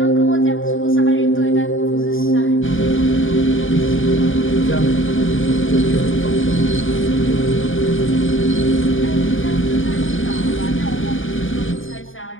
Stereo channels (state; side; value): late; right; 0.58 ms